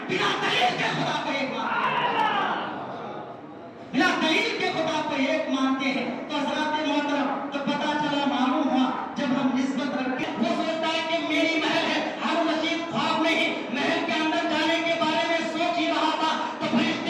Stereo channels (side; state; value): both; identical; correlation 1.00